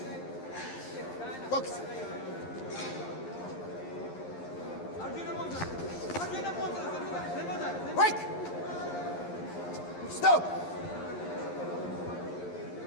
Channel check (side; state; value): right; late; 11 ms